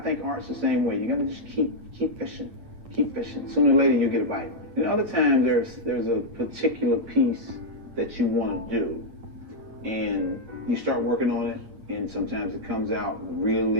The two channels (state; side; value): late; left; 8.7 ms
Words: think art's the same way. You gotta just keep fishing, keep fishing. Sooner or later you'll get a bite. And other times there's a particular piece that you want to do, and you start working on it, and sometimes it comes out